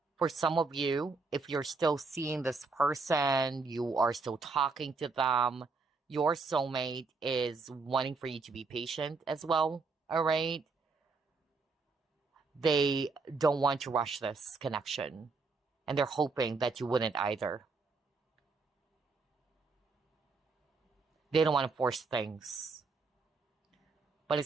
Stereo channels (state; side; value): quieter; left; 4.2 dB